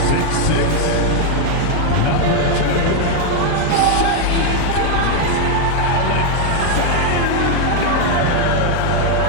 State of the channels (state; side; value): different; both; correlation 0.01